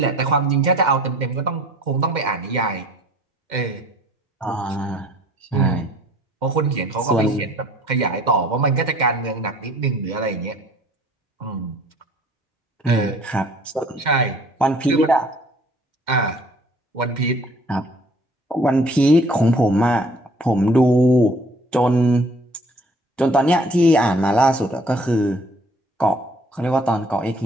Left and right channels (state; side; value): normal; both; correlation 0.55